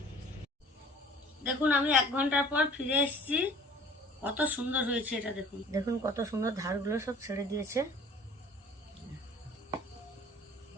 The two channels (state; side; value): normal; both; correlation 0.48